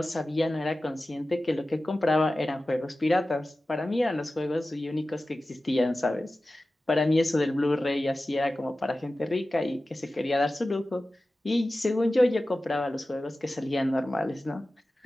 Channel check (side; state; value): both; normal; correlation 0.95